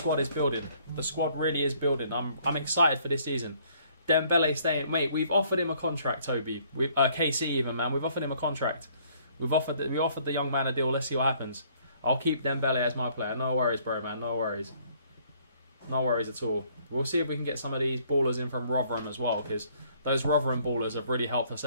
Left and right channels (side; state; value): both; inverted; correlation -0.62